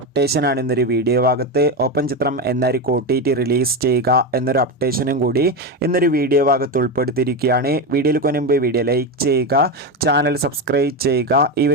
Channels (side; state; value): both; normal; correlation 0.14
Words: ഇന്നൊരു വീഡിയോ ഭാഗത്ത്. ഓപ്പൺ ചിത്രം എന്നായിരിക്കും OTT റിലീസ് ചെയ്യുക എന്നൊരു അപ്ഡേഷനും കൂടി ഇന്നൊരു വീഡിയോ ഭാഗത്ത് ഉൾപ്പെടുത്തിയിരിക്കുകയാണ്. വീഡിയോയിൽ മുൻപ് വീഡിയോ ലൈക്ക് ചെയ്യുക, ചാനൽ സബ്സ്ക്രൈബ് ചെയ്യുക. ഈ